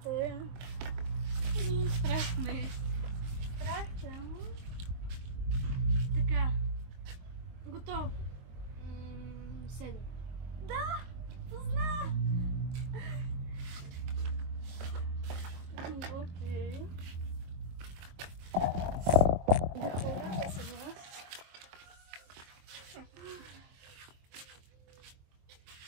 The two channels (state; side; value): late; left; 23 ms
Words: е. Страх ме. Страх съм. Така. Готов. 7. Да! Познах! Окей. Да хора, да се вас.